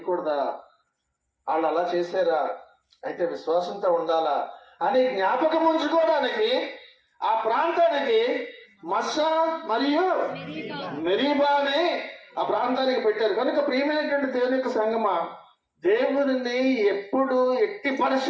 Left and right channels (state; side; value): identical; both; correlation 1.00